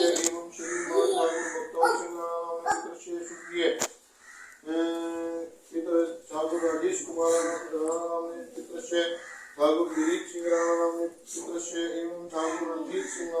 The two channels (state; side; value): identical; both; correlation 1.00